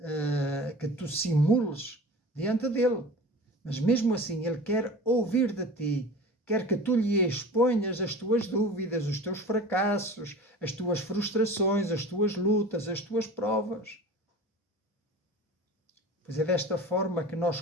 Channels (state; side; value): normal; both; correlation 0.37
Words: que tu simules diante dele. Mas mesmo assim, ele quer ouvir de ti. Quer que tu lhe exponhas as tuas dúvidas, os teus fracassos, as tuas frustrações, as tuas lutas, as tuas provas. Pois é desta forma que nós